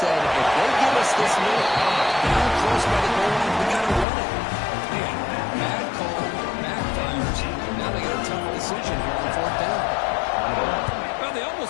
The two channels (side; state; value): right; drops out; at 4.0 s